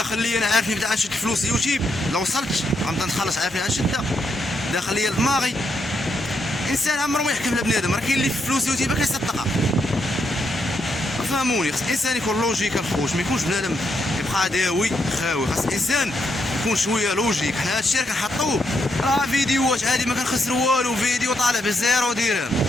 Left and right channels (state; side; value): normal; both; correlation 0.79